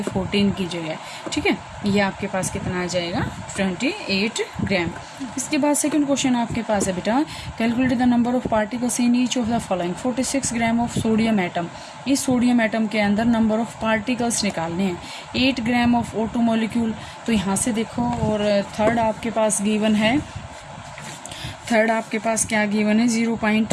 14 की जगह, ठीक है। ये आपके पास कितना आ जाएगा, 28 ग्राम। इसके बाद सेकंड क्वेश्चन आपके पास है बेटा, calculate the number of particles in each of the following. 46 gram of sodium atom. इस सोडियम एटम के अंदर नंबर ऑफ पार्टिकल्स निकालने हैं। 8 ग्राम ऑफ O2 मॉलिक्यूल। तो यहाँ से देखो, और थर्ड आपके पास गिवन है, थर्ड आपके पास क्या गिवन है,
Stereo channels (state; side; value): identical; both; correlation 1.00